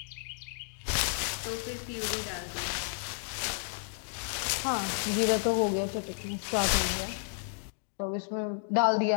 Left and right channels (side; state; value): right; silent; digital silence